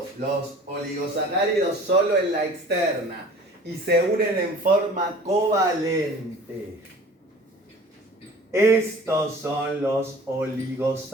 Los oligosacáridos solo en la externa. y se unen en forma covalente. Estos son los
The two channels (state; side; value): normal; both; correlation 0.45